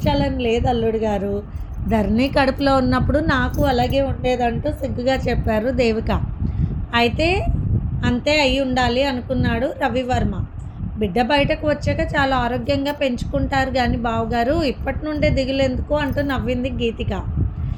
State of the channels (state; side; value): identical; both; correlation 1.00